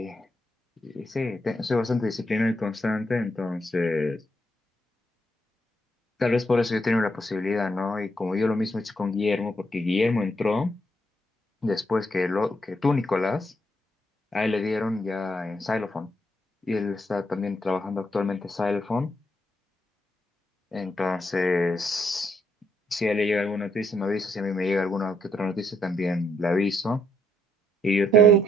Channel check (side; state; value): both; normal; correlation 0.75